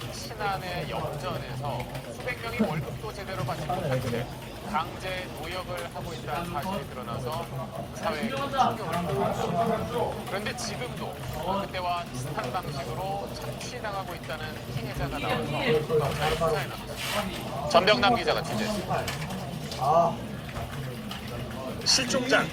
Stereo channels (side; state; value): both; identical; correlation 1.00